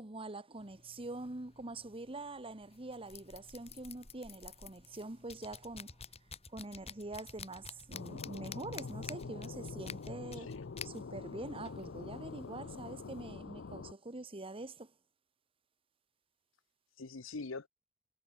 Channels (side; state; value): both; normal; correlation 0.37